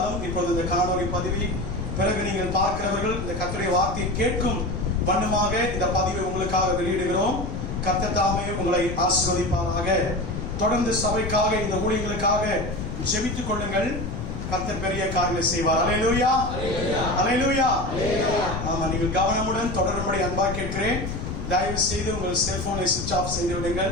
இப்பொழுது இந்த காணொலி பதிவை பிறகு நீங்கள் பார்க்கிறவர்கள் இந்த கர்த்தருடைய வார்த்தையை கேட்கும் வண்ணமாக இந்த பதிவை உங்களுக்காக வெளியிடுகிறோம். கர்த்தர் தாமே உங்களை ஆசீர்வதிப்பாராக. தொடர்ந்து சபைக்காக இந்த ஊழியங்களுக்காக ஜெபித்துக் கொள்ளுங்கள். கர்த்தர் பெரிய காரியங்களை செய்வார். அல்லேலூயா, அல்லேலூயா. ஆமா, நீங்கள் கவனமுடன் தொடரும்படி அன்பாக கேட்கிறேன். தயவு செய்து உங்கள் செல்போனை சுவிட்ச் ஆஃப் செய்து விடுங்கள்.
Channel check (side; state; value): left; noise; rumble, 6 dB below the sound